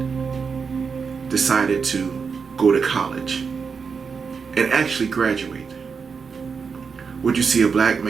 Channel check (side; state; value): left; quieter; 5.6 dB